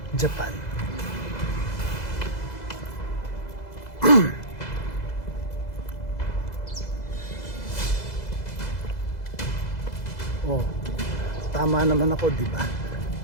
Japan. tama naman ako, di ba?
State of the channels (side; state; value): right; late; 2.0 ms